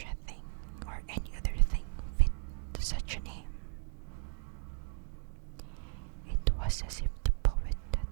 a thing, or any other thing fit such a name. It was as if the poet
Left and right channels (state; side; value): silent; left; 54 dB below the other